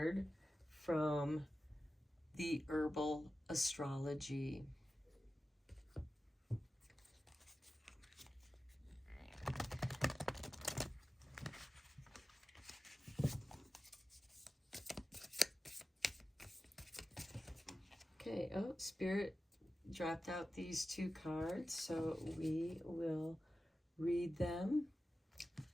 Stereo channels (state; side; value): normal; both; correlation 0.94